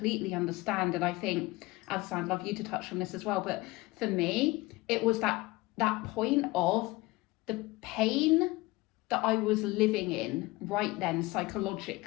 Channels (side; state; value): right; quieter; 21.5 dB